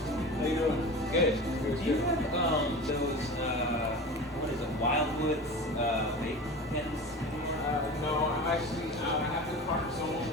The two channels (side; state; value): both; normal; correlation 0.32